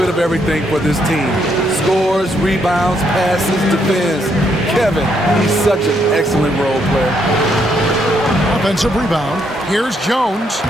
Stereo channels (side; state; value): both; normal; correlation 0.74